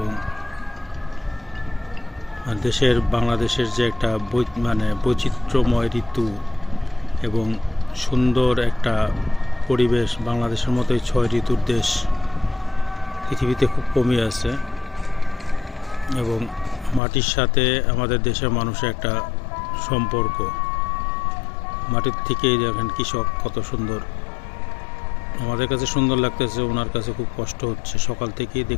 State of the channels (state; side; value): drops out; right; at 17.0 s